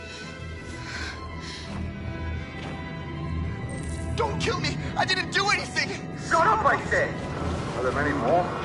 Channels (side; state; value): both; identical; correlation 1.00